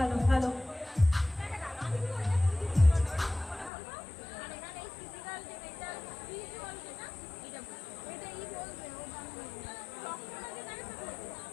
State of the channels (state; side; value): drops out; right; at 3.7 s